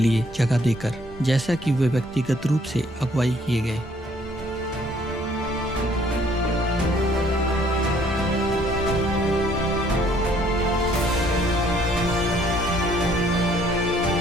जगह देकर, जैसा कि वे व्यक्तिगत रूप से अगुवाई किए गए।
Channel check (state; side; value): normal; both; correlation 0.62